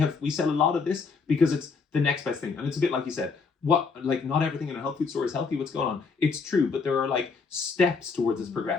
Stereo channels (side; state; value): right; quieter; 4.9 dB